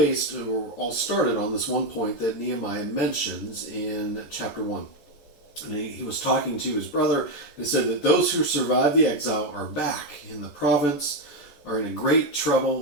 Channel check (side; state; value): right; late; 13 ms